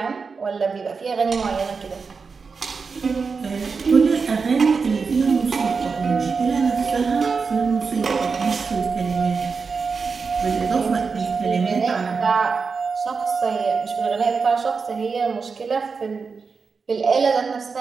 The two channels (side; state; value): left; quieter; 5.0 dB